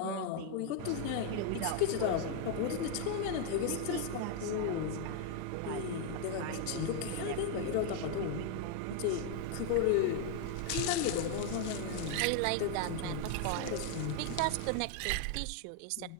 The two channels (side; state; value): both; different; correlation 0.00